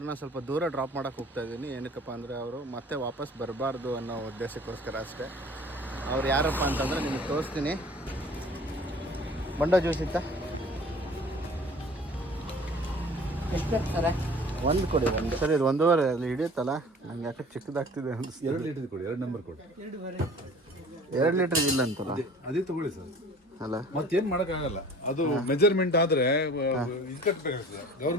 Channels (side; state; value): both; normal; correlation 0.47